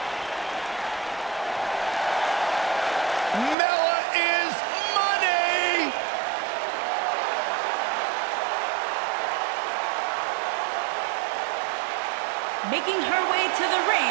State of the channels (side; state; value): left; drops out; at 3.6 s